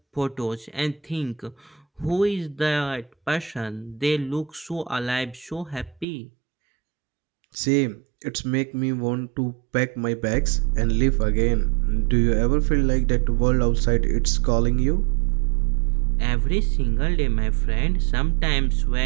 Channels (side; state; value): left; drops out; at 6.1 s